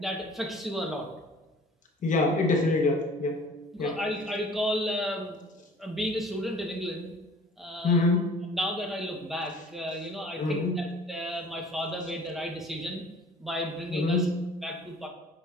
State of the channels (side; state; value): both; normal; correlation 0.49